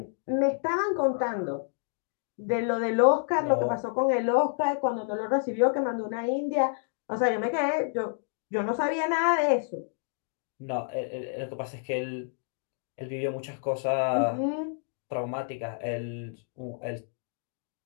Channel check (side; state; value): right; silent; digital silence